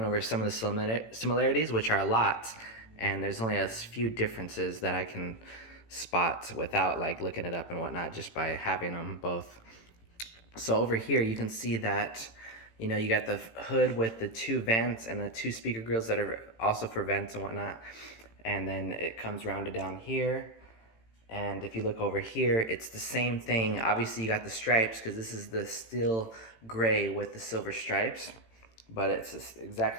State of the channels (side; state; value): right; late; 18 ms